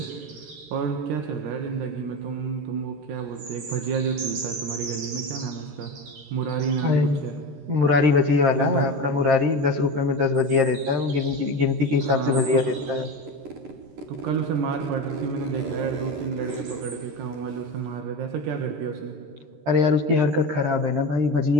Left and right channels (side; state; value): left; late; 13 ms